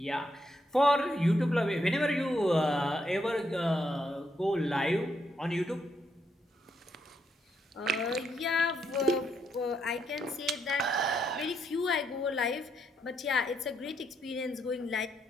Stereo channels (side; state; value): both; normal; correlation 0.77